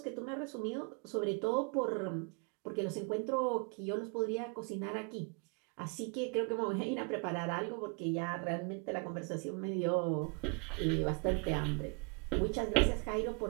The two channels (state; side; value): quieter; left; 33.7 dB